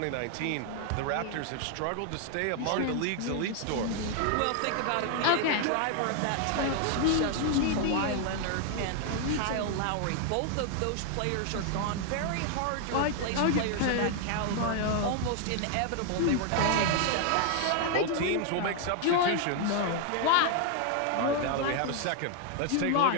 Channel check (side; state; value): both; different; correlation 0.00